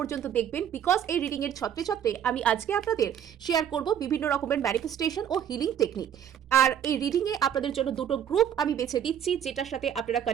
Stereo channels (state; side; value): quieter; left; 9.2 dB